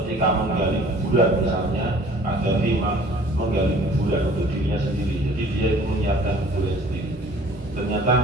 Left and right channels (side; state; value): both; normal; correlation 0.51